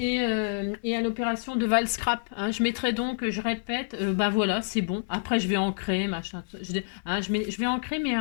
à l'opération de Val Scrap. Hein. Je mettrai donc, je répète, bah voilà, c'est bon. Après, je vais ancrer, machin. Je vais ancrer, mais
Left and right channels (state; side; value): silent; right; 60 dB below the other